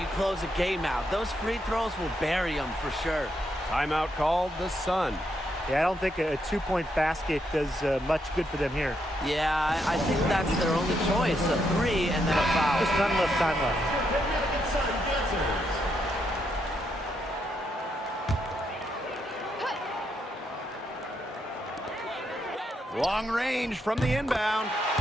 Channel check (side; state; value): both; normal; correlation 0.79